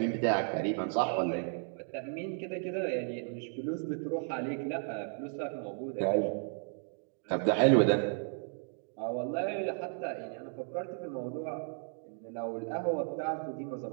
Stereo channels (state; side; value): silent; left; 55 dB below the other